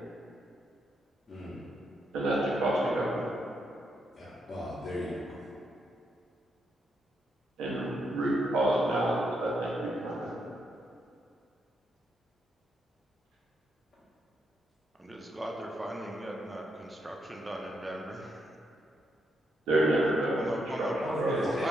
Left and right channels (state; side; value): normal; both; correlation 0.80